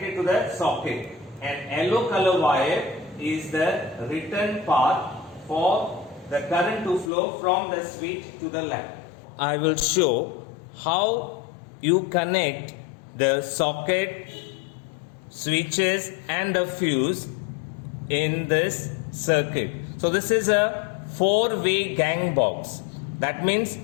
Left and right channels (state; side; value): drops out; right; at 7.1 s